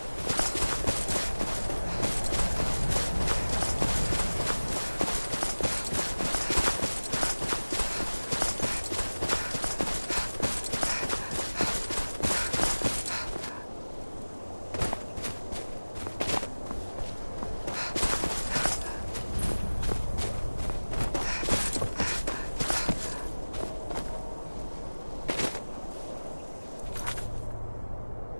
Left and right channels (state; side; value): inverted; both; correlation -1.00